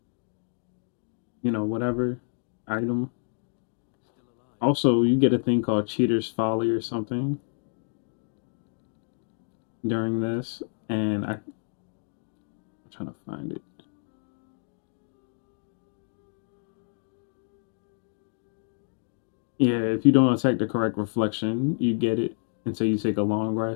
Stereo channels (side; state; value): right; silent; digital silence